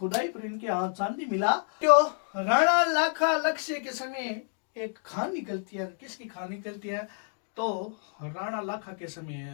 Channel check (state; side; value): silent; right; 58 dB below the other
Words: पर इनके हाथ चांदी मिला। तो राणा लाखा लक्ष्य के समय एक खान निकलती है। किसकी खान निकलती है, तो राणा लाखा के